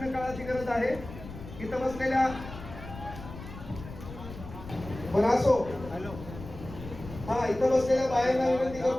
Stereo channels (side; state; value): left; noise; rumble, 13 dB below the sound